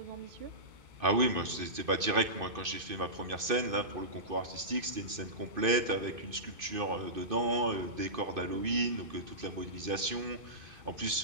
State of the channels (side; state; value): left; late; 2.5 ms